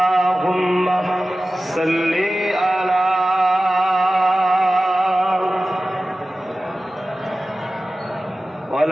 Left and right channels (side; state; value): both; normal; correlation 0.95